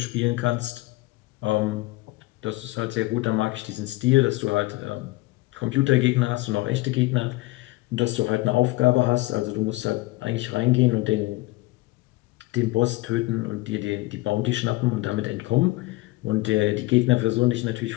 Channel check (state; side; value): quieter; right; 20.4 dB